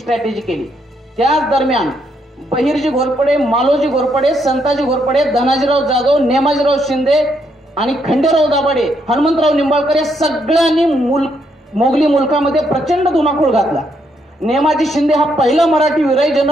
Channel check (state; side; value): normal; both; correlation 0.75